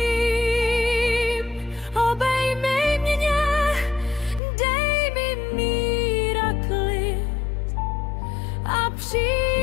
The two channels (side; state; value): right; drops out; at 4.4 s